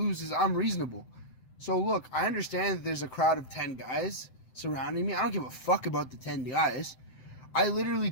is I'm reasonable. So look, I understand that there's a crowd of 10 guys surrounding me. I don't give a fuck about the 10 guys. I literally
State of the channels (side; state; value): right; late; 7.9 ms